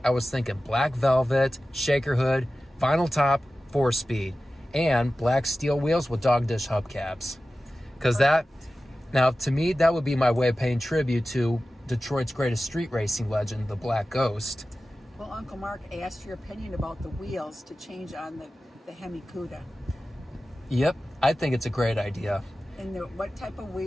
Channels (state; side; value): normal; both; correlation 0.95